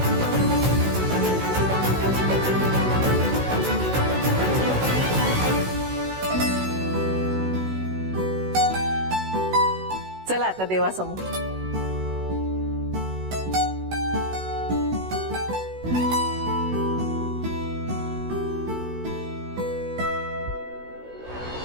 चला आता देवासमोर.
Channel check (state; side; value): late; left; 16 ms